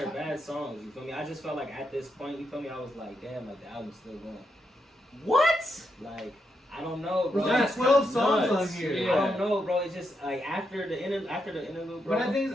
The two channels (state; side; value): normal; both; correlation 0.82